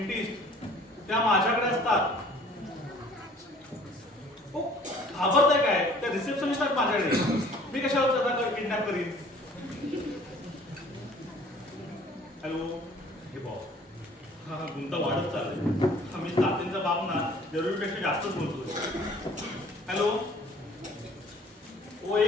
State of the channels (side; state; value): both; normal; correlation 0.53